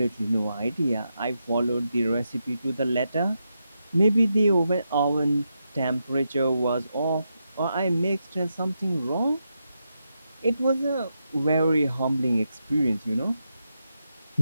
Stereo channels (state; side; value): inverted; both; correlation -0.85